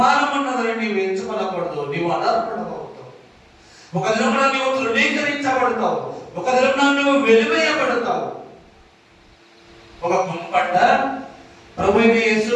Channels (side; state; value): both; identical; correlation 1.00